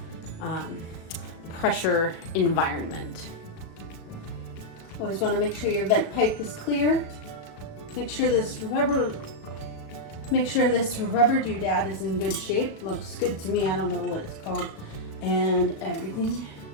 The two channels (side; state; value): right; late; 36 ms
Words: pressure environment. Always want to make sure your vent pipe is clear. Make sure this rubber doodad is in good shape. Looks good to me. I don't know what it's called. And everything